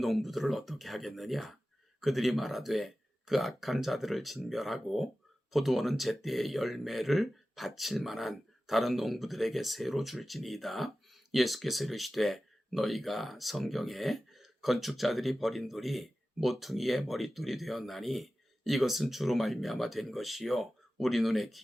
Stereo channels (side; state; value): both; normal; correlation 0.95